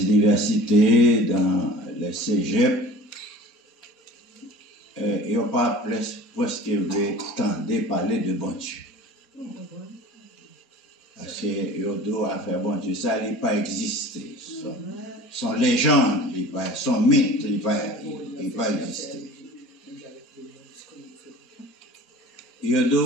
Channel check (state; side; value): normal; both; correlation 0.41